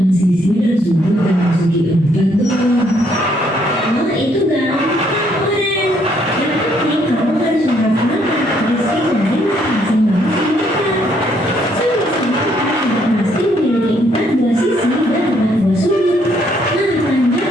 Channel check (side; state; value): both; normal; correlation 0.69